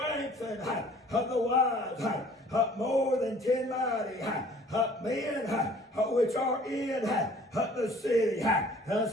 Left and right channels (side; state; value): both; normal; correlation 0.53